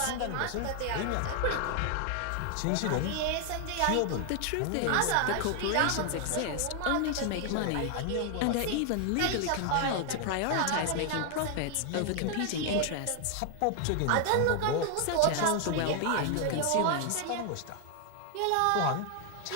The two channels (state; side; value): different; both; correlation 0.00